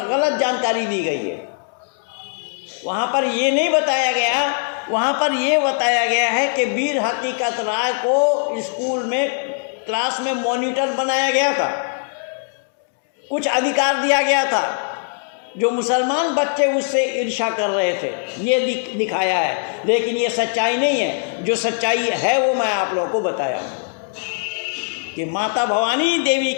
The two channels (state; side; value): silent; right; digital silence